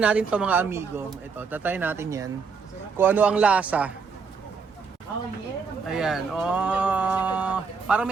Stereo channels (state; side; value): quieter; left; 5.3 dB